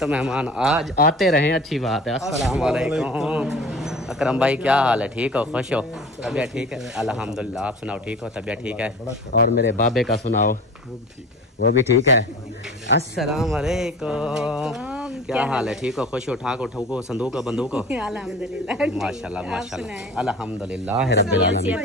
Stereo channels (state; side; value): normal; both; correlation 0.39